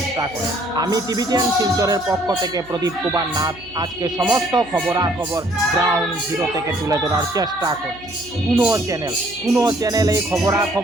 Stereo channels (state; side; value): noise; right; hum, 21 dB below the sound